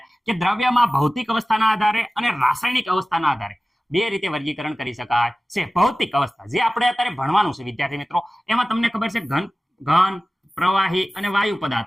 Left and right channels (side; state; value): both; normal; correlation 0.97